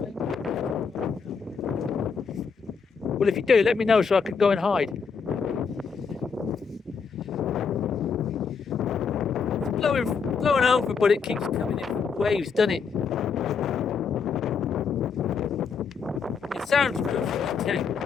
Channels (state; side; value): quieter; right; 5.7 dB